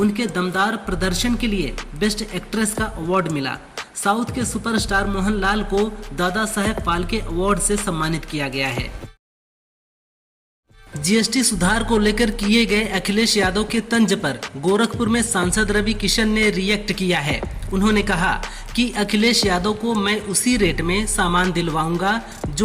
दमदार प्रदर्शन के लिए बेस्ट एक्ट्रेस का अवार्ड मिला। साउथ के सुपरस्टार मोहनलाल को दादा साहेब फाल्के अवार्ड से सम्मानित किया गया है। जीएसटी सुधार को लेकर किए गए अखिलेश यादव के तंज पर गोरखपुर में सांसद रवि किशन ने रिएक्ट किया है। उन्होंने कहा कि अखिलेश यादव को मैं उसी रेट में सामान दिलवाऊंगा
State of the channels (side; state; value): both; identical; correlation 1.00